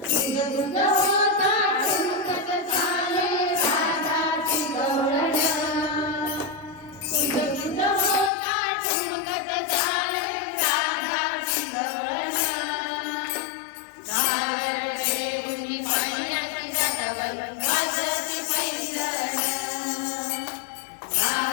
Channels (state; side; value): drops out; right; at 8.3 s